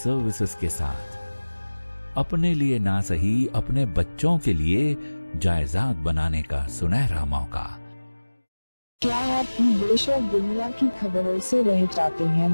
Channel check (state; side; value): inverted; both; correlation -1.00